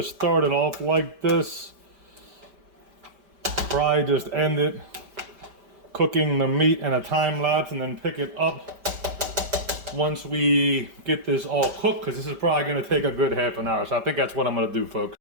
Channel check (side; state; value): left; late; 5.1 ms